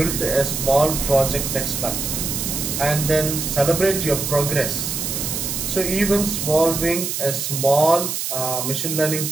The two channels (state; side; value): noise; right; hiss, 3 dB below the sound